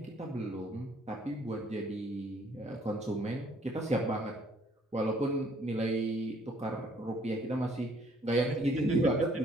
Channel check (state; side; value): normal; both; correlation 0.62